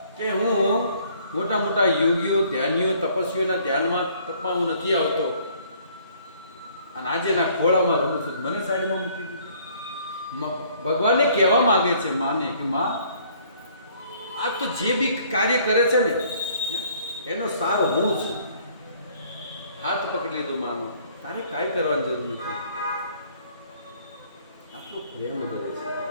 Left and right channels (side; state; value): both; inverted; correlation -0.60